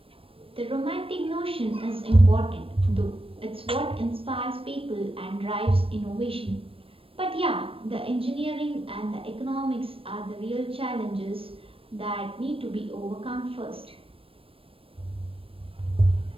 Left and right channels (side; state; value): left; late; 0.27 ms